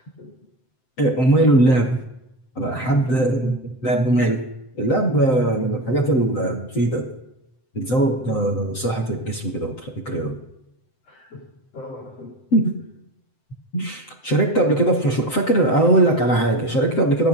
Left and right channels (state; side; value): late; right; 7.8 ms